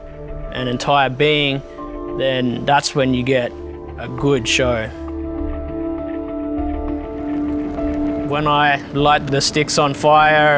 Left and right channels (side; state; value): both; identical; correlation 1.00